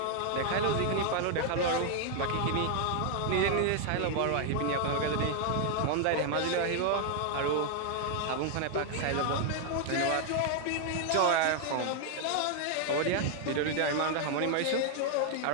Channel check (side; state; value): both; different; correlation 0.00